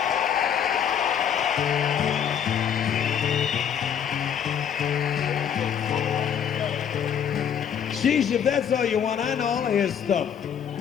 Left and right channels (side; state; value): right; quieter; 8.4 dB